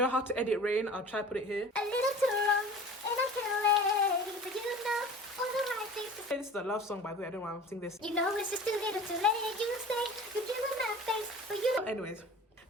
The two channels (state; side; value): normal; both; correlation 0.41